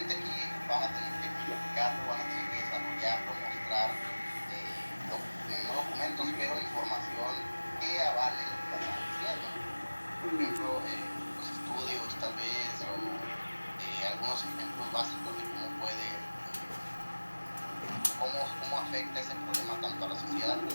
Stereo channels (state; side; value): inverted; both; correlation -1.00